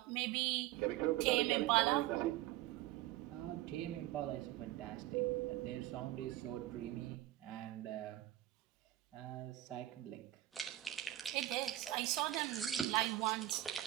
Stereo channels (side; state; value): left; quieter; 15.1 dB